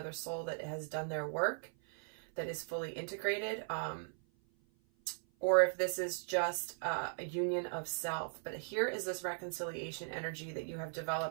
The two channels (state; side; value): silent; left; 52 dB below the other